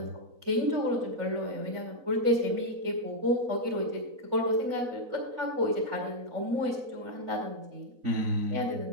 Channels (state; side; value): late; left; 4.0 ms